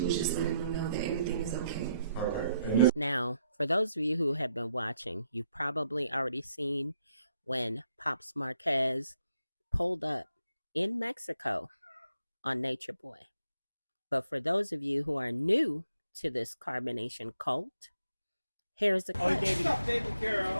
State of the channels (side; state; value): both; inverted; correlation -0.77